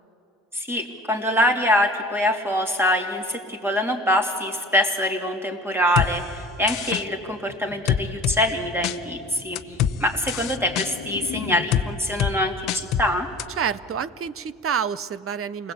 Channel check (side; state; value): both; normal; correlation 0.41